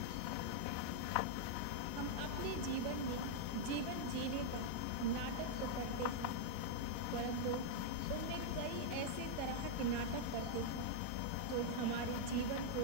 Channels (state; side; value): different; both; correlation -0.01